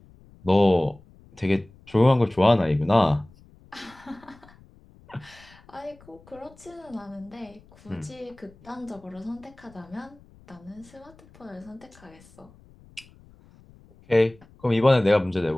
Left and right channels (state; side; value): noise; left; rumble, 26 dB below the sound